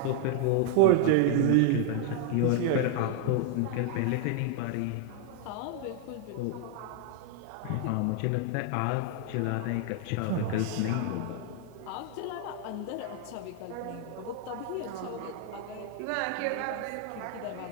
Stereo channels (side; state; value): both; different; correlation 0.00